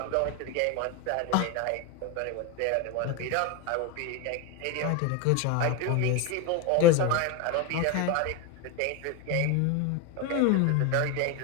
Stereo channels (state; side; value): different; both; correlation 0.03